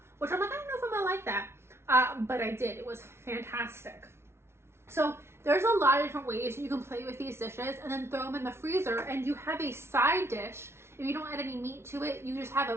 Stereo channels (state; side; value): late; left; 0.12 ms